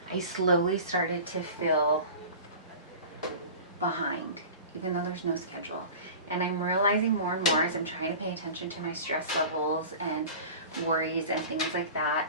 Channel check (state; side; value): inverted; both; correlation -0.37